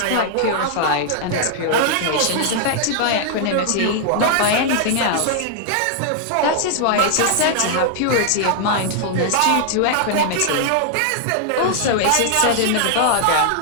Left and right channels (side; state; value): both; different; correlation -0.01